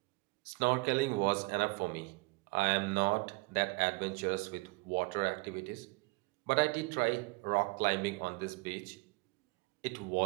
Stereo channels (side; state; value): left; quieter; 26.9 dB